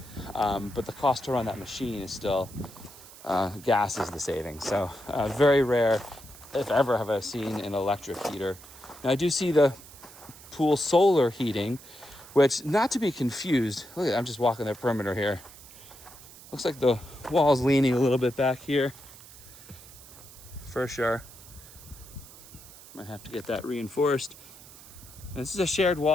But the cost to run that machine is still, gas is the savings. So very rare, if ever, have I seen an electric heater. Now I do see the pool solar heating, which, not to be confused, look at, I'm just walking the perimeter here. Looks like the wall's leaning a little bit back here, for sure. Might have to get that reinforced. And this is a shared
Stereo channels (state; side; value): noise; right; hiss, 19 dB below the sound